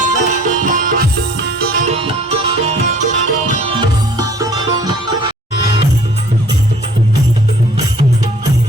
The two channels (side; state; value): both; normal; correlation 0.54